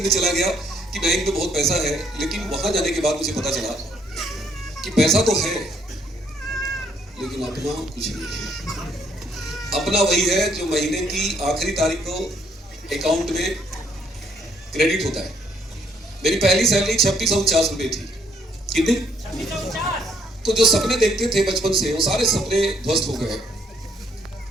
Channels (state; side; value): normal; both; correlation 0.68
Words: चला गया कि बैंक में बहुत पैसा है। लेकिन वहां जाने के बाद मुझे पता चला कि पैसा तो है लेकिन अपना कुछ नहीं है। अपना वही है जो महीने की आखिरी तारीख को अकाउंट में क्रेडिट होता है। मेरी पहली सैलरी 2650 रुपए थी। कितनी? तो जो सपने देखते थे बचपन से, वो सारे सपने ध्वस्त हो गए।